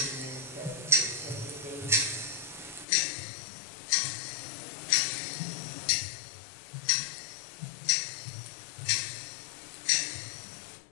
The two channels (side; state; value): right; drops out; at 2.9 s